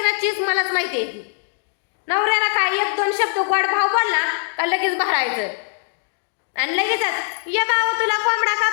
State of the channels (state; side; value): silent; right; digital silence